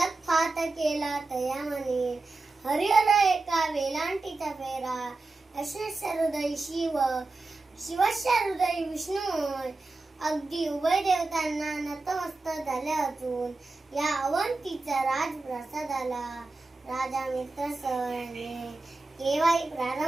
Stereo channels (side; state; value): left; quieter; 3.4 dB